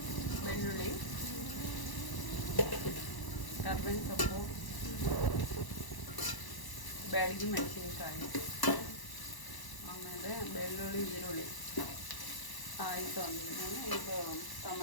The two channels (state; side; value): late; right; 1.0 ms